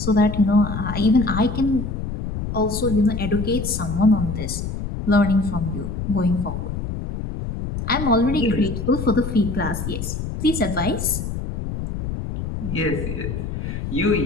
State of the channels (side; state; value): left; noise; rumble, 5 dB below the sound